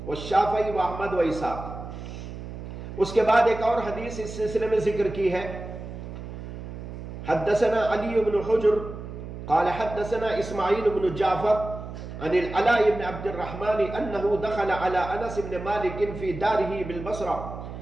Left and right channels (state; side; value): noise; right; hum, 10 dB below the sound